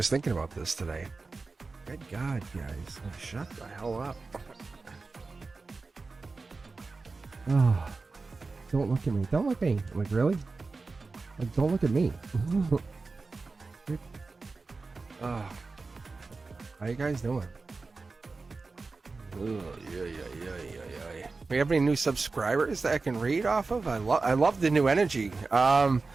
thinking about this today. Good God, guys. Shut the hell up. Oh, don't look at me. Don't look at me. Like, really? Like, don't look at me. How you guys doing? Yeah. We have any new subscribers that I can read off of? I love the new energy. I'm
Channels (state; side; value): quieter; left; 3.9 dB